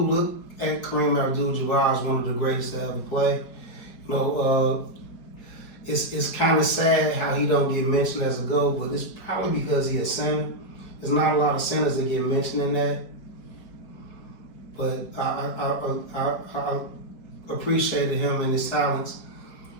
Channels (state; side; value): late; right; 4.6 ms